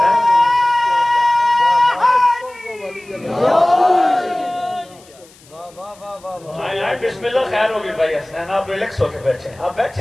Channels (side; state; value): left; noise; hiss, 26 dB below the sound